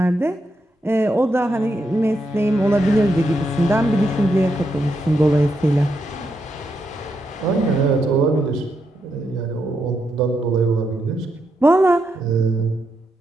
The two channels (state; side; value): normal; both; correlation 0.82